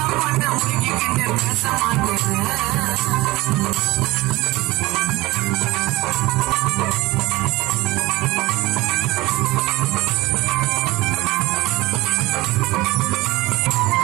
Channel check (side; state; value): left; quieter; 20.2 dB